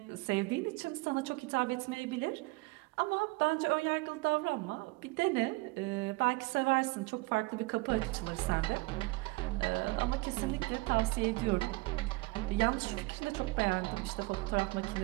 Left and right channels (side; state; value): left; quieter; 24.2 dB